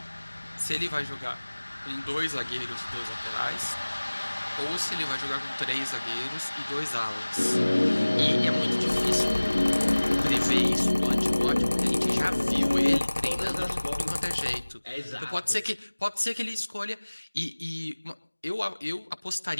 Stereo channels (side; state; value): both; inverted; correlation -1.00